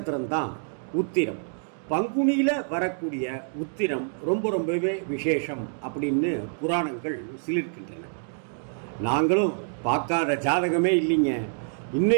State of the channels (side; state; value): left; silent; 60 dB below the other